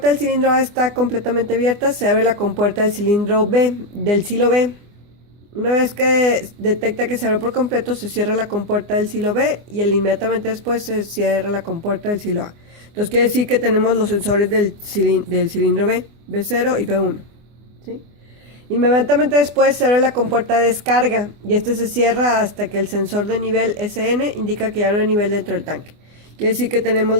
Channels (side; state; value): left; late; 24 ms